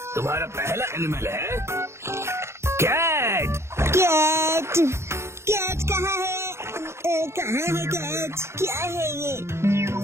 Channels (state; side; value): late; left; 0.13 ms